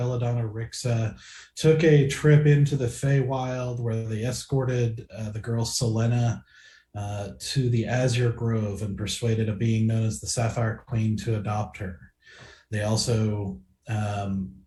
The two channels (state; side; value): identical; both; correlation 1.00